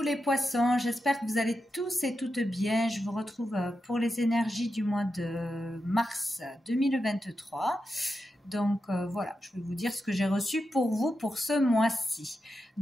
poissons, j'espère que vous allez tous et toutes bien. Je vous retrouve pour les énergies du mois de mars 2023. Donc voilà, je vais vous dire ce que j'ai reçu pour vous pour ce mois-ci.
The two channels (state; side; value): normal; both; correlation 0.88